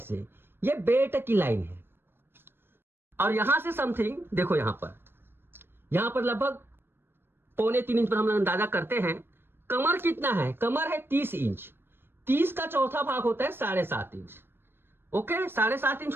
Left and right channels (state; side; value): late; left; 0.10 ms